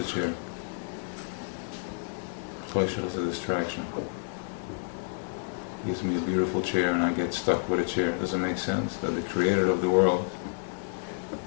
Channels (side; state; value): right; silent; digital silence